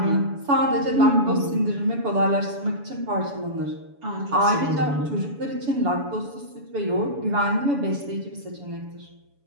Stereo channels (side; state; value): left; late; 7.0 ms